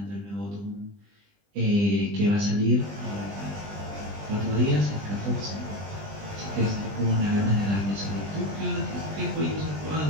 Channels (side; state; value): left; late; 20 ms